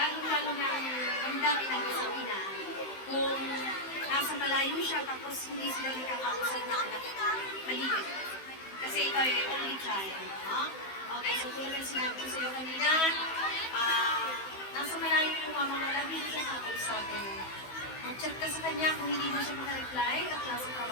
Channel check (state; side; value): late; right; 16 ms